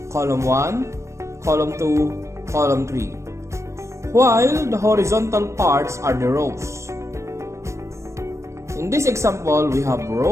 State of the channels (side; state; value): left; late; 0.14 ms